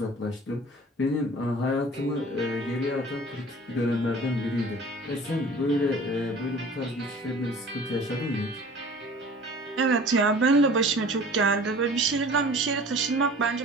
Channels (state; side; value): normal; both; correlation 0.45